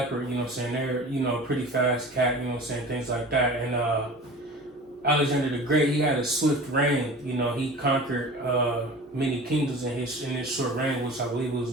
you know what I'm saying, they're, you know, pretty fast cat, you know what I'm saying, things like that. And Alexander the Great, he had a swift reign, you know, he conquered many kingdoms in his short reign, which I believe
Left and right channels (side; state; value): both; normal; correlation 0.38